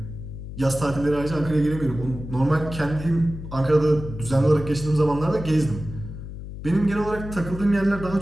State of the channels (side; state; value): left; noise; hum, 10 dB below the sound